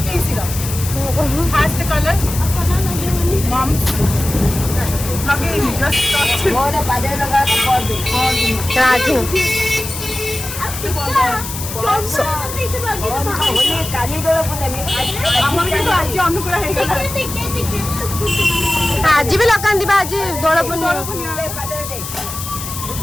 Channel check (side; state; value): left; noise; hiss, 8 dB below the sound